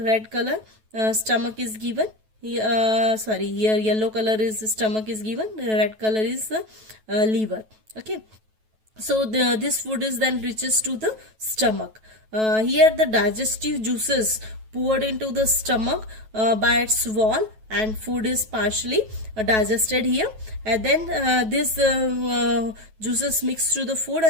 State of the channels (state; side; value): late; left; 9.2 ms